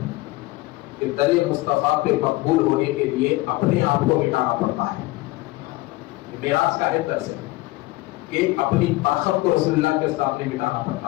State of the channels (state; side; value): quieter; right; 19.8 dB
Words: کہ در مصطفیٰ پہ مقبول ہونے کے لیے اپنے آپ کو مٹانا پڑتا ہے. معراج کا ہے درس ہے کہ اپنی طاقت کو رسول اللہ کے سامنے مٹانا پڑتا